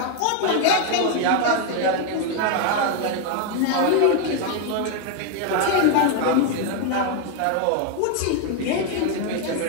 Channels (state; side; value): different; both; correlation 0.01